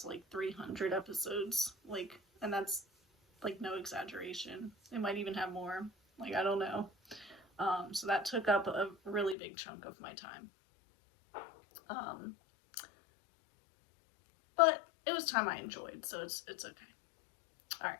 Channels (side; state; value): right; drops out; at 9.3 s